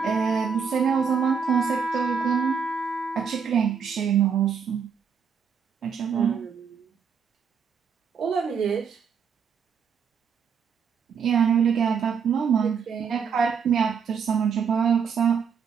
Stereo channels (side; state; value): left; quieter; 6.4 dB